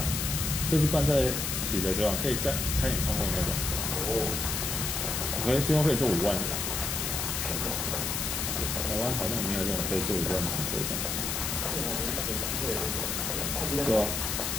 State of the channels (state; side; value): noise; left; hiss, 1 dB below the sound